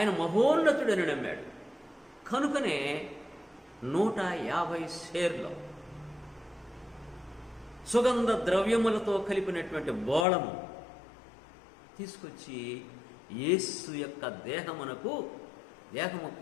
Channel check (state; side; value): drops out; right; at 10.2 s